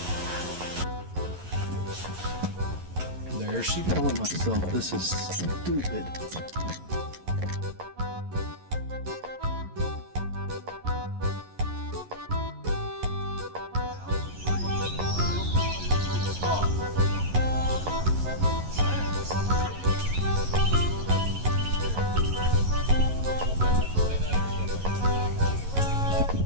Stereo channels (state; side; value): late; left; 11 ms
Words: There she telling myself this is stupid.